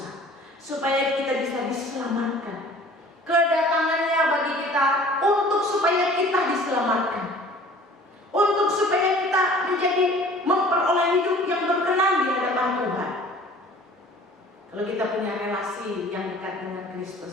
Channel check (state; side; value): normal; both; correlation 0.48